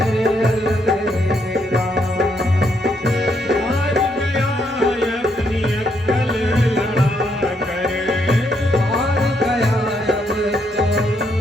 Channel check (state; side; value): normal; both; correlation 0.75